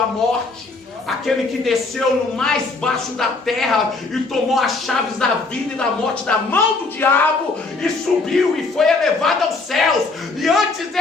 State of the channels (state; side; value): quieter; right; 3.7 dB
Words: morte. Aquele que desceu no mais baixo da terra e tomou as chaves da vida e da morte da mão do diabo e subiu e foi elevado aos céus. E antes